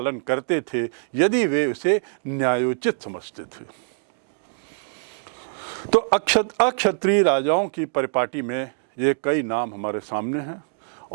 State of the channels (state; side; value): silent; left; digital silence